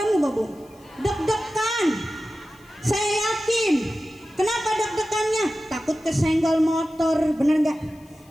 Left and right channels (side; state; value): left; noise; hiss, 29 dB below the sound